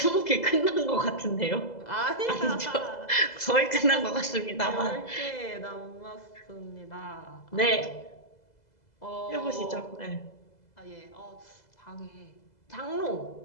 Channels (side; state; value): right; late; 2.0 ms